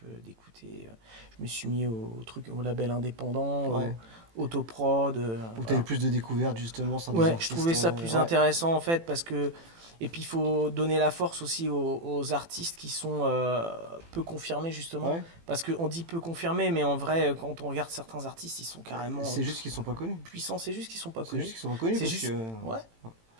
d'écouter. Je me suis mis au label indépendant, Ouais. au autoprod. Où Voilà. t'avais plus de découvertes justement sans des Ouais, je artistes, trouvais ça plus ouais. intéressant en fait parce que. Et puis il faut donner la force aussi aux artistes qui sont peu confirmés justement. Ouais. Parce qu'on dit peu confirmés, mais en vrai, quand on regarde certains artistes, ils sont carrément C'est juste qu'ils sont pas connus. puissants. C'est juste qu'ils sont pas C'est connus. juste qu'ils sont pas connus C'est parce juste- que. Ouais.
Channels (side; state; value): left; late; 18 ms